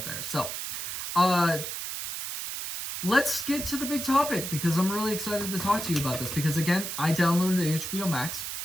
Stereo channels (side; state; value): right; noise; hiss, 5 dB below the sound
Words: there. So let's get to the big topic, because I'm really excited to talk to you about this, because again, I downloaded HBO Max,